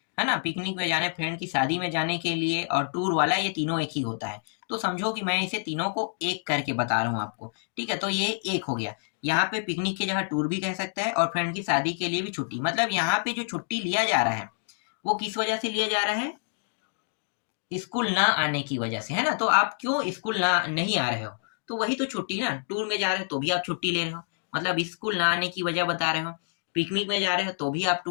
है ना, पिकनिक में जाने, फ्रेंड की शादी में जाने के लिए, और टूर वाला, ये तीनों एक ही होता है। तो समझो कि मैं इसे तीनों को एक करके बता रहा हूँ आपको, ठीक है। तो ये एक हो गया, यहाँ पे पिकनिक की जगह टूर भी कह सकता है, और फ्रेंड की शादी के लिए भी छुट्टी। मतलब यहाँ पे जो छुट्टी लिया जा रहा है वो किस वजह से लिया जा रहा है, स्कूल ना आने की वजह से, है ना। तो आप क्यों स्कूल ना नहीं आ रहे हो, तो वही तो छुट्टी ना। टूर में जा रहे हो तो भी आप छुट्टी ले रहे हो, मतलब स्कूल ना आने की वजह बता रहे हो। पिकनिक में जा रहे हो तो भी आप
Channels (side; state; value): right; silent; digital silence